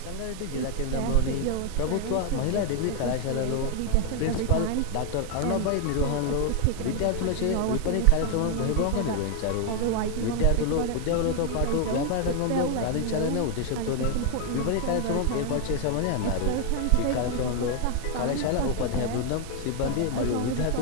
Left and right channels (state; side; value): different; both; correlation 0.00